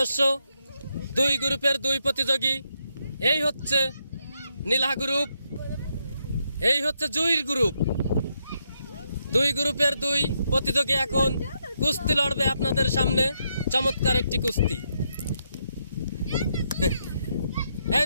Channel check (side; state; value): both; inverted; correlation -0.79